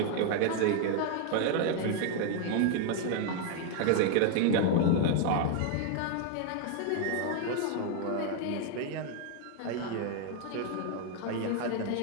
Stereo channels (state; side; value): different; both; correlation 0.01